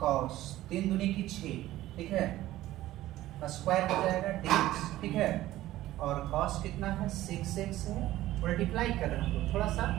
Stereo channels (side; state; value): left; quieter; 15.3 dB